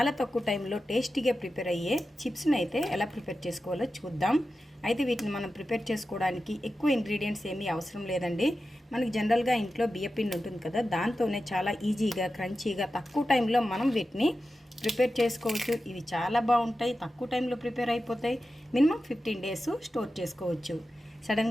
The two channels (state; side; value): normal; both; correlation 0.92